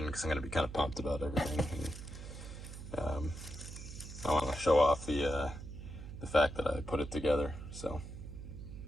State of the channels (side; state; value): right; noise; hum, 11 dB below the sound